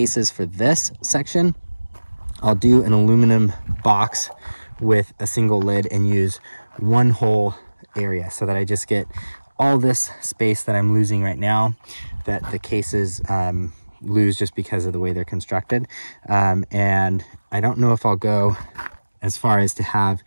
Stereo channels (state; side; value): inverted; both; correlation -1.00